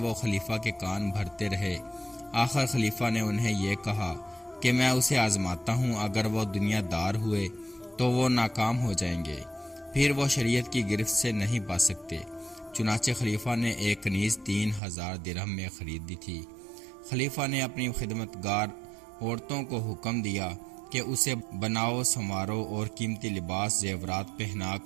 خلیفہ کے کان بھرتے رہے۔ آخر خلیفہ نے انہیں یہ کہا کہ میں اسے آزماتا ہوں، اگر وہ دنیا دار ہوئے تو وہ ناکام ہو جائیں گے، پھر وہ شریعت کی گرفت سے نہیں بچ سکتے۔ چنانچہ خلیفہ نے ایک کنیز 3000 درہم میں خریدی تھی۔ خلیفہ نے اپنی خدمتگار عورتوں کو حکم دیا کہ اسے بناؤ، سنوارو اور قیمتی لباس زیورات پہنا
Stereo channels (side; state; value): left; drops out; at 14.8 s